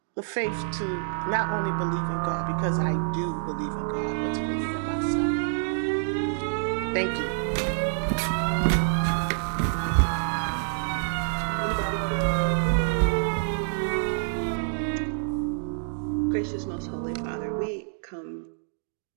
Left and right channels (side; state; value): left; silent; digital silence